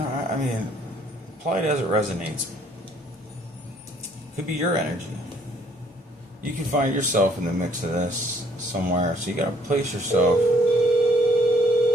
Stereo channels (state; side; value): normal; both; correlation 0.62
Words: mean, apply it as it resonates. Could be your energy. You can find yourself in the mix of this somewhere. So you gotta place yourself.